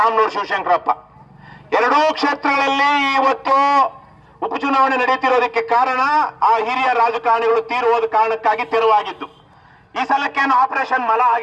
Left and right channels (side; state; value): both; identical; correlation 1.00